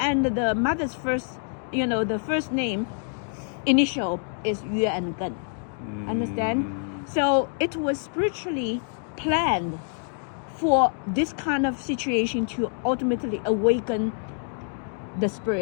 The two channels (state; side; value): silent; right; 60 dB below the other